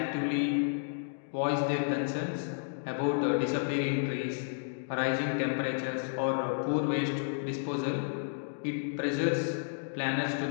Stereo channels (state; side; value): silent; right; digital silence